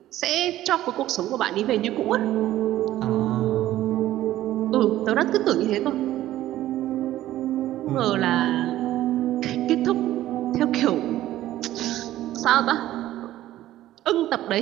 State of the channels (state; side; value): quieter; left; 14.2 dB